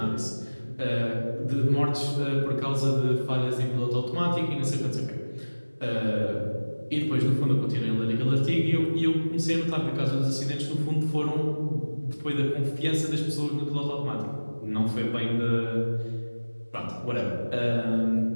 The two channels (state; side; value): inverted; both; correlation -1.00